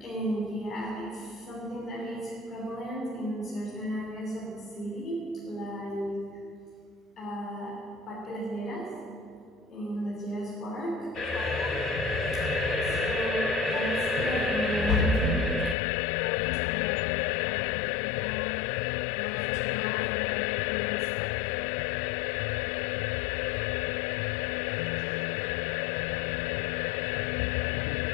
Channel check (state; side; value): drops out; right; at 15.8 s